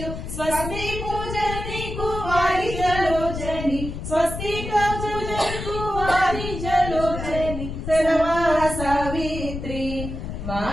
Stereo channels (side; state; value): left; noise; rumble, 7 dB below the sound